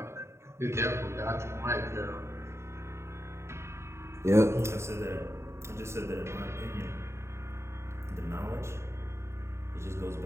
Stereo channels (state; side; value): late; left; 0.13 ms